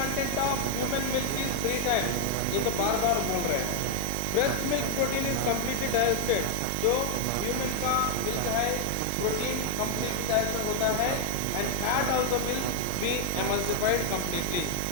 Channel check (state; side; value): different; both; correlation 0.00